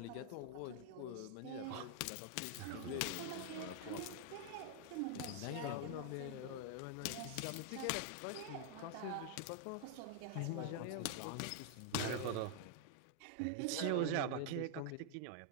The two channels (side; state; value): both; different; correlation 0.00